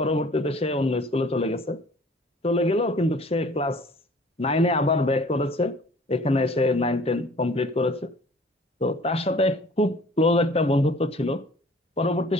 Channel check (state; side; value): normal; both; correlation 0.51